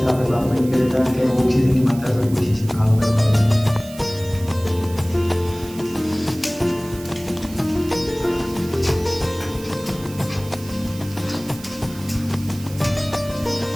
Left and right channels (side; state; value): right; noise; hiss, 18 dB below the sound